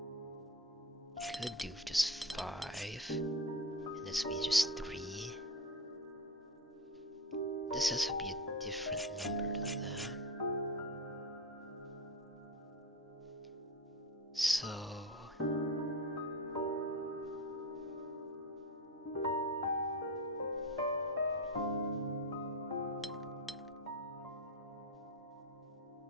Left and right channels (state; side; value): normal; both; correlation 0.24